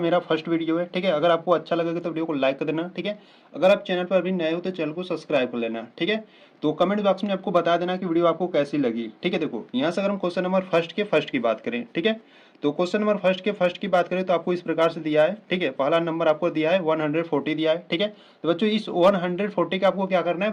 फर्स्ट वीडियो है। ठीक है, अगर आपको अच्छा लगेगा तो वीडियो को लाइक कर देना। ठीक है, अगर आप चैनल पर अभी नए हो तो चैनल को सब्सक्राइब कर लेना। ठीक है, तो कमेंट बॉक्स में आपको बता देना कि वीडियो आपको कैसी लगी। ठीक है, देखो यहाँ से अगर हम क्वेश्चन नंबर फर्स्ट की बात करें, ठीक है, तो क्वेश्चन नंबर फर्स्ट की बात करें तो आपको इस प्रकार से दिया है। ठीक है, पहला नंबर आपको दिया है 140 दिया है। ठीक है, तो बच्चों इस 140 का आपको क्या करना है,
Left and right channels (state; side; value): identical; both; correlation 1.00